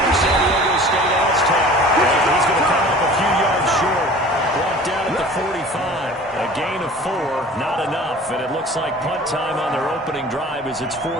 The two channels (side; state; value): both; normal; correlation 0.44